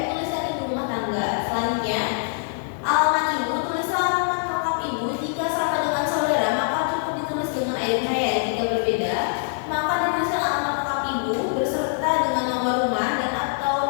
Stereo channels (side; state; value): right; silent; digital silence